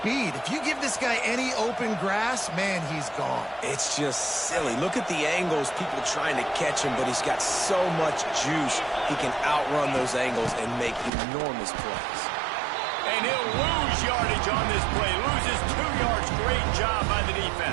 If you give this guy any open grass, man, he's gone. It's just silly. Look at the angles, people trying to catch him, but he's got so much juice. He can outrun those angles and make enormous plays. And he'll lose yardage on this play. Loses 2 yards. Great job by the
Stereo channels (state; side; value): drops out; left; at 11.1 s